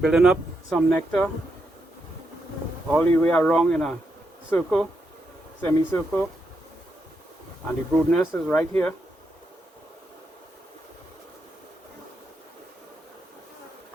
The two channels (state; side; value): normal; both; correlation 0.82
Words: up some nectar all the way around in a circle. Semicircle, and the brood nest is right here.